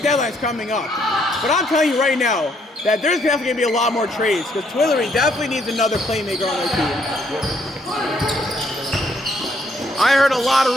deadline's coming up. But I'm telling you right now that there's definitely going to be a lot more trades because Twillory definitely needs another playmaker on their team. I heard a lot of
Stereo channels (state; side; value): normal; both; correlation 0.69